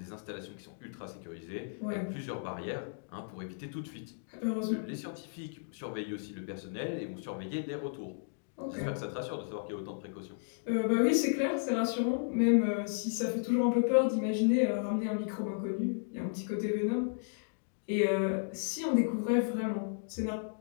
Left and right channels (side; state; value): right; silent; digital silence